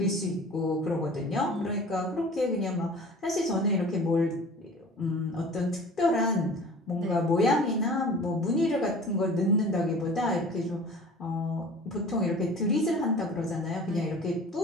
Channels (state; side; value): normal; both; correlation 0.43